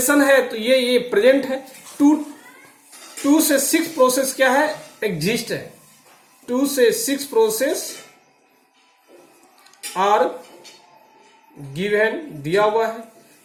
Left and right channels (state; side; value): identical; both; correlation 1.00